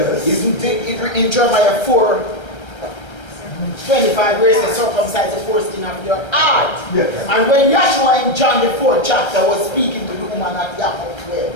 Isn't it in Jeremiah 4:25 where it says circumcise the foreskin of your heart? Yes. And when Yahshua in John the 4th chapter was speaking to the woman at Yaakov 12,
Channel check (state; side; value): late; right; 1.3 ms